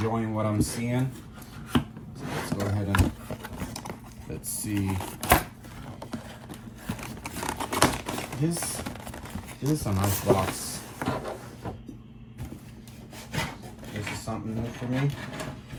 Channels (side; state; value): both; identical; correlation 1.00